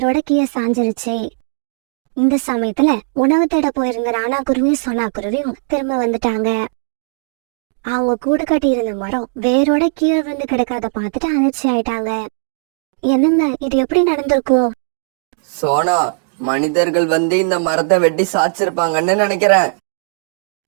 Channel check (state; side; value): silent; left; digital silence